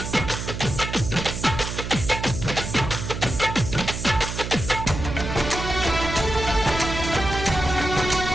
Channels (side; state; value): right; noise; hum, 6 dB below the sound